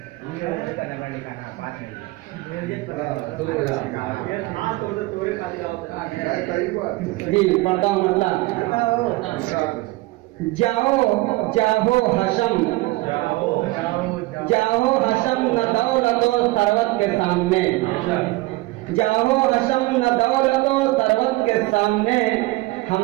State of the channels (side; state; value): left; quieter; 21.1 dB